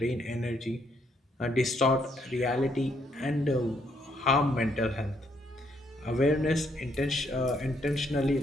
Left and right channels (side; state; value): both; normal; correlation 0.72